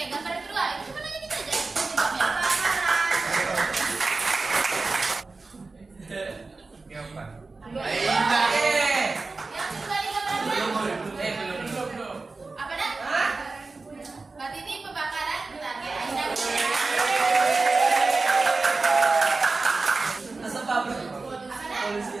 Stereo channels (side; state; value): left; quieter; 3.8 dB